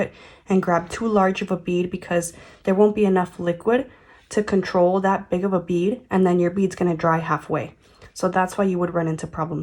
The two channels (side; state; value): both; identical; correlation 1.00